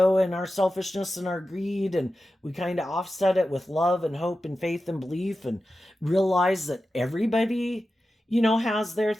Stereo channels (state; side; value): normal; both; correlation 0.92